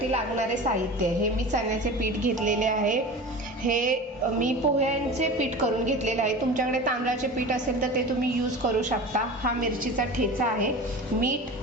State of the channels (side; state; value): both; normal; correlation 0.33